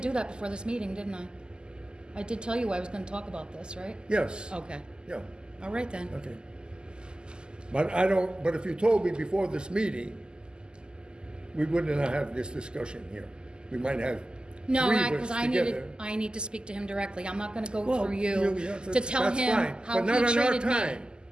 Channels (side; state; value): left; late; 0.047 ms